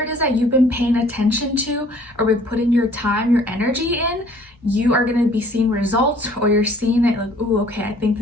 is that you've been paying attention to or been putting your time, your energy in, you are going to be seeing results, or you're seeing it like, oh, okay, I think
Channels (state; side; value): normal; both; correlation 0.56